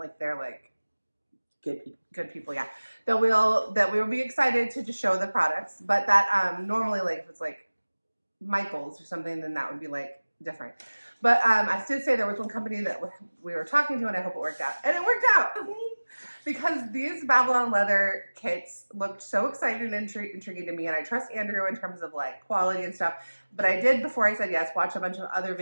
they're good people, yeah. That we will be excited to just show the products, but that normally if it's Michael's or something, then that would be different. But I did say there was one company that we were talking to, and I hope it worked out, and it worked out because these Babylon leather kits looked so exciting and intriguing to me, and I trust Andrew in terms of quality and stuff. But I did, before I said yes, watch a bunch of other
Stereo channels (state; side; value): inverted; both; correlation -1.00